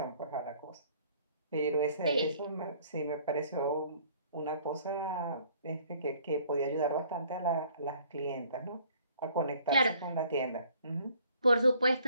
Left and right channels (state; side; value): inverted; both; correlation -0.58